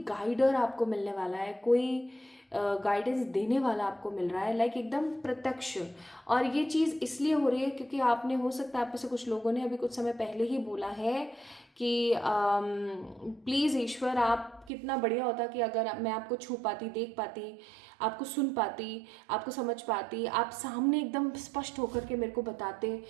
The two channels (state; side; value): drops out; left; at 14.7 s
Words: गाइडर आपको मिलने वाला है, कोई गाइडेंस देने वाला आपको मिल रहा है, लाइक एकदम प्रत्यक्ष। और ये चीज़ इसलिए हो रही है क्योंकि आपने, हो सकता है आप में से कुछ लोगों ने अभी कुछ समय पहले ही बोला है कि प्लीज़ ईश्वर आप कितना बढ़िया होता कि अगर मैं आपको छू पाती, देख पाती, आपको सुन पाती, आपको समझ पाती, आप सामने एकदम स्पष्ट होकर के मेरे को बताते,